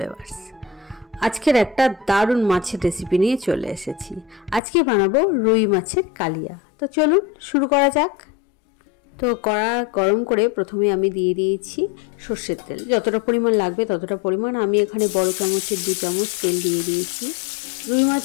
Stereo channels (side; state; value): right; drops out; at 4.6 s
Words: আজকের একটা দারুণ মাছের রেসিপি নিয়ে চলে এসেছি। আজকে বানাবো রুই মাছের কালিয়া। তো চলুন শুরু করা যাক। তো কড়া গরম করে প্রথমে আমি দিয়ে দিয়েছি সর্ষের তেল। যতটা পরিমাণ লাগবে ততটা পরিমাণ, আমি এখানে বড় চামচের 2 চামচ তেল দিয়ে দিয়েছি। রুই